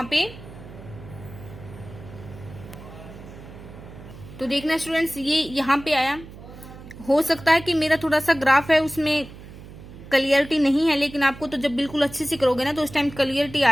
पे। तो देखना स्टूडेंट्स, ये यहाँ पे आया, हो सकता है कि मेरा थोड़ा सा ग्राफ है उसमें क्लियरिटी नहीं है, लेकिन आपको तो जब बिल्कुल अच्छे से करोगे ना तो उस टाइम क्लियरिटी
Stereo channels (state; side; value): noise; right; hum, 16 dB below the sound